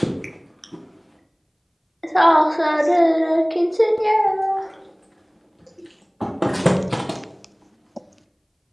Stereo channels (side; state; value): both; identical; correlation 1.00